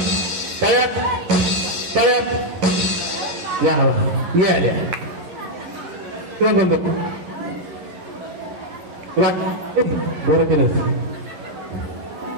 तळ्यात तळ्यात या हो ये आल्या तुला बंद तुला बरं केलं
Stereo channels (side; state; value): left; late; 11 ms